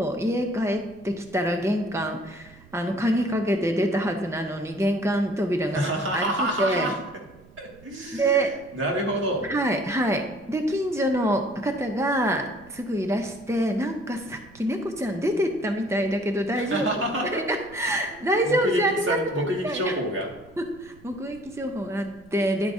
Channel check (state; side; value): noise; right; rumble, 24 dB below the sound